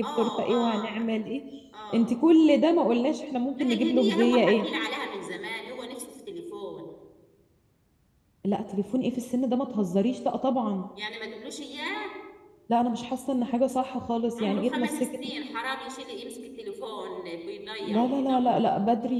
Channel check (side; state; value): both; identical; correlation 1.00